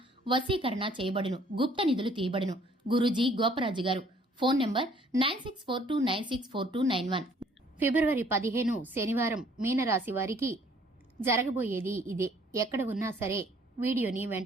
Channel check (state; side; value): normal; both; correlation 0.60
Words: వశీకరణ చేయబడును, గుప్త నిధులు తీయబడును. గురూజీ గోపరాజు గారు. Phone number 9642964291. ఫిబ్రవరి 15 శనివారం మీనరాశి వారికి జరగబోయేది ఇదే. ఎక్కడ ఉన్నా సరే వీడియోని